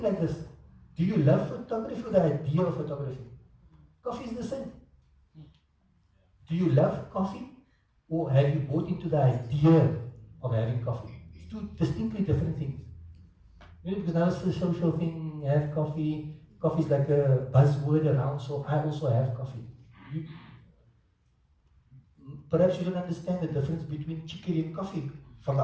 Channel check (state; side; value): identical; both; correlation 1.00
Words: like this. Do you love photography or the idea of photography? Coffee is the same. Do you love coffee or have you bought into the idea of having coffee? It's two distinctly different things. Because now it's a social thing, have coffee. Coffee is like a buzzword around, so I also have coffee. Perhaps you don't understand the difference between chicory and coffee from the